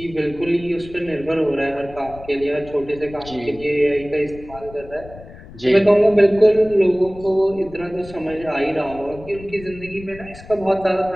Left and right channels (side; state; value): left; noise; rumble, 18 dB below the sound